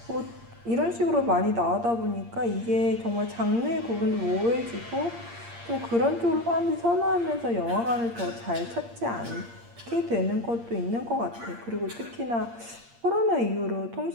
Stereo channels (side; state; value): left; late; 8.6 ms